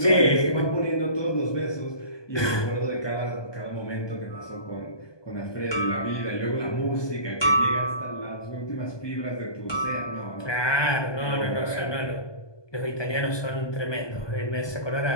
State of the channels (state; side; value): late; right; 1.2 ms